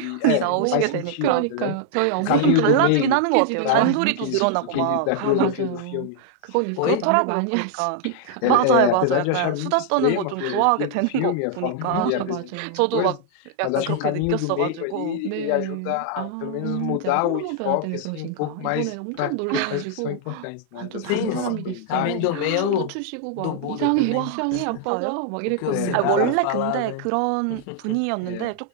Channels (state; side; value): different; both; correlation 0.00